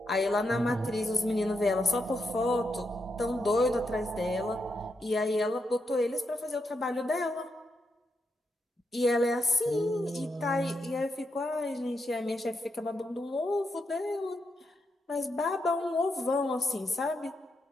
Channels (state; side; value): normal; both; correlation 0.83